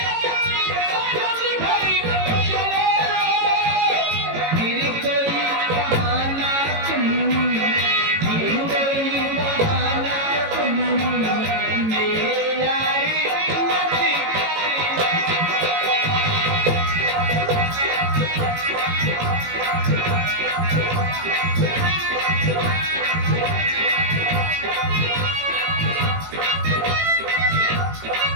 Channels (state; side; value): late; left; 18 ms